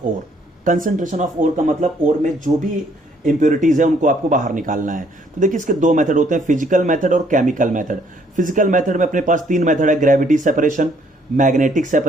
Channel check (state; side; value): normal; both; correlation 0.66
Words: ore. Concentration of ore का मतलब ओर में जो भी इंप्योरिटीज है उनको आपको बाहर निकालना है। तो देखिए इसके दो मेथड होते हैं, फिजिकल मेथड और केमिकल मेथड। फिजिकल मेथड में अपने पास तीन मेथड है, ग्रेविटी सेपरेशन, मैग्नेटिक